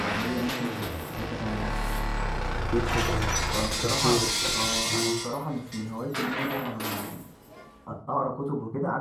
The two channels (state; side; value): identical; both; correlation 1.00